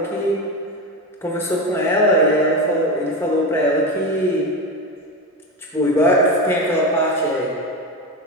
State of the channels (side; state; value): both; normal; correlation 0.18